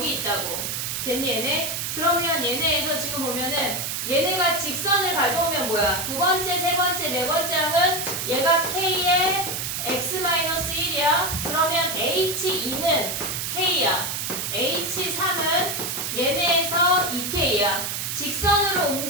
있다고. 됐니 얘네? 그러면 얘네에서 지금 보면은 얘네가 직선을 가져오면 뭐야? 두 번째, 세 번째, 네 번째 항은 얘가 K의 X-1이야. 그러면 H2는 K야. H3은 얘네에서 2K야. 직선으로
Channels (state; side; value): noise; right; hiss, 3 dB below the sound